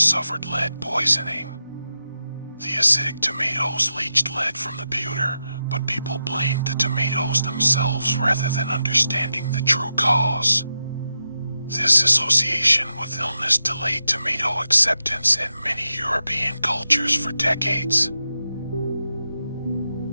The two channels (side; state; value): both; inverted; correlation -0.89